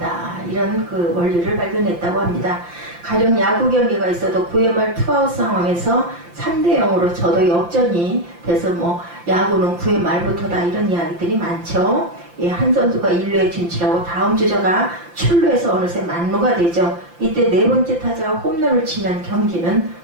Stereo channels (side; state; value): left; late; 5.8 ms